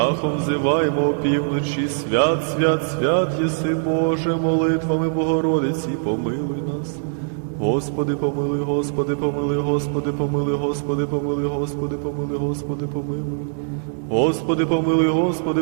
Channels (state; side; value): silent; left; digital silence